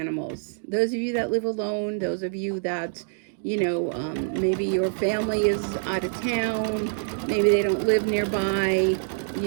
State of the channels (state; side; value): silent; left; digital silence